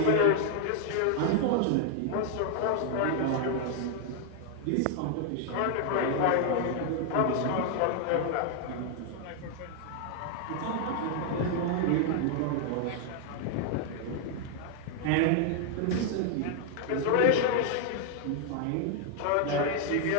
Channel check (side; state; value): both; different; correlation 0.00